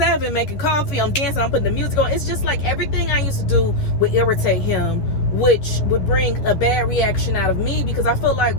making coffee. I'm dancing, I'm putting the music on. It's just like everything I used to do would irritate him, which would bring a bad reaction out of me, because I feel like,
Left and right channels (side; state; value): right; late; 10 ms